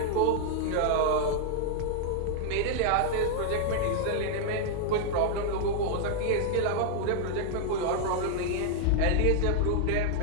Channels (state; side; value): different; both; correlation 0.00